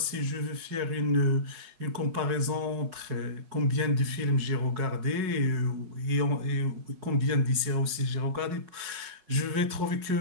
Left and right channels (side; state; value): left; late; 5.4 ms